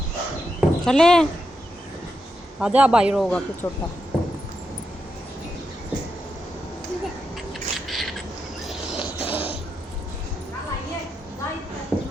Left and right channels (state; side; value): normal; both; correlation 0.85